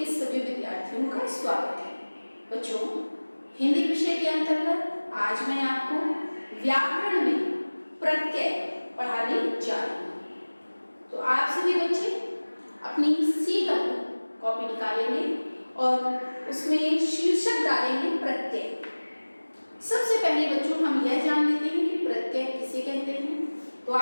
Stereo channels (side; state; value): both; inverted; correlation -1.00